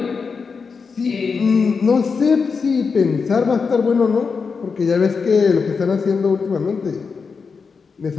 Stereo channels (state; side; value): quieter; right; 5.2 dB